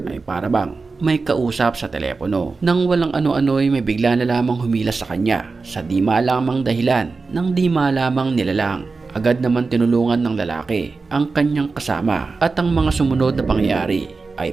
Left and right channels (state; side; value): quieter; left; 4.2 dB